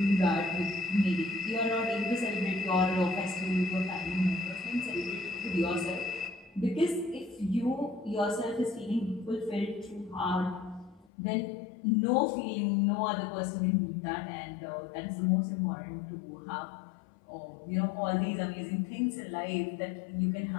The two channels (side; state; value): right; drops out; at 11.1 s